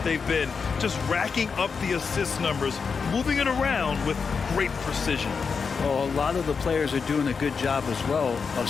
been? Just racking up the assist numbers, moving it around with great precision. Well, a lot of the players are doing a good job as well of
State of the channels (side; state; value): right; quieter; 5.5 dB